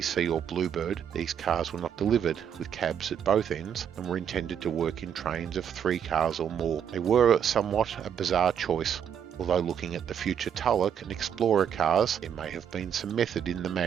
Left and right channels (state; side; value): quieter; left; 8.5 dB